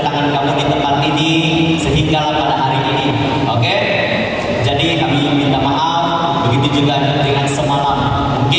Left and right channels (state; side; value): identical; both; correlation 1.00